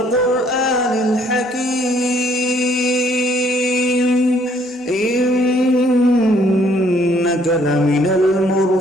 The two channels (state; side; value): normal; both; correlation 0.64